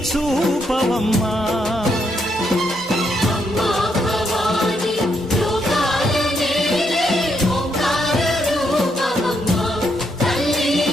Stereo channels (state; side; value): normal; both; correlation 0.77